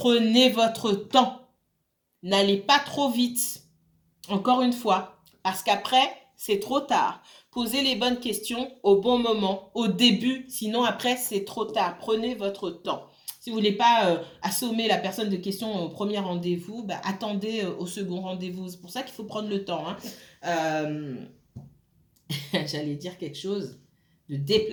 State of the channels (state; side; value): identical; both; correlation 1.00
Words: votre temps. N'allez pas trop vite. Encore une fois, parce qu'après, c'est trop tard. Posez les bonnes questions au bon moment, au début, sinon après, c'est trop tard. Prenez votre temps. Si vous voulez pas assommer la personne de questions au premier rendez-vous, bah, attendez au second rendez-vous. C'est pour ça qu'il faut prendre le temps. Hein. J'allais dire quelque chose de